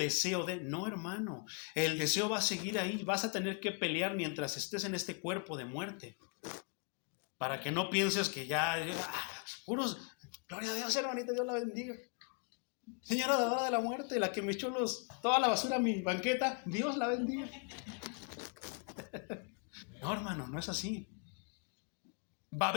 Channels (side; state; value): right; quieter; 37.0 dB